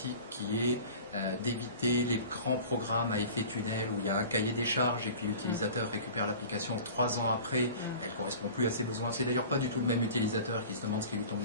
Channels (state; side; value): inverted; both; correlation -0.40